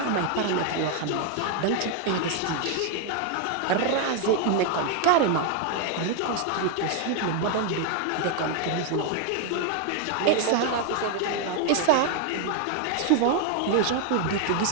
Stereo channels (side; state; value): both; different; correlation 0.01